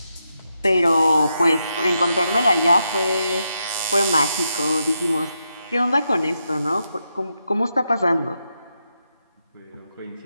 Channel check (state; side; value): inverted; both; correlation -0.84